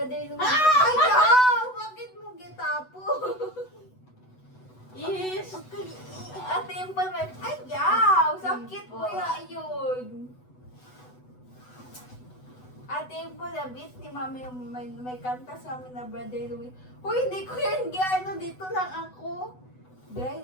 Louie. Ah! Ay, yaw! Bakit mo gitapo? Yes! Ate yung pa may... Ay, yaw! Sakit mo yun. Ate yung po nabit ni mami yung may kanta sa amin na brother Louie. Uy, hindi ko yan gano. Dito lang ako. Dry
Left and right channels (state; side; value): late; right; 8.0 ms